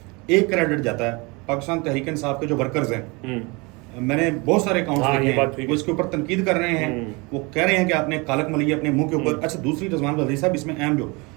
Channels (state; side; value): quieter; left; 27.4 dB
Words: ایک کریڈٹ جاتا ہے پاکستان تحریک انصاف کے جو ورکرز ہیں، میں نے بہت سارے اکاؤنٹس دیکھے ہیں، وہ اس کے اوپر تنقید کر رہے ہیں، وہ کہہ رہے ہیں کہ آپ نے کالک ملی ہے اپنے منہ کے اوپر۔ اچھا دوسری رضوان غزالی صاحب اس میں اہم جو